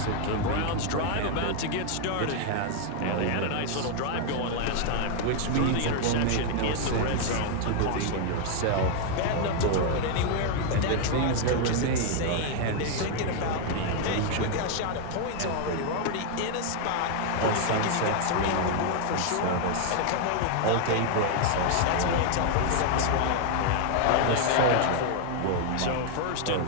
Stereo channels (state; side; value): different; both; correlation 0.00